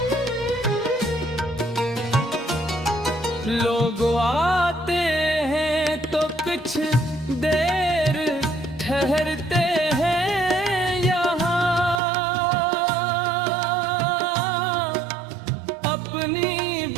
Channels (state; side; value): drops out; left; at 12.0 s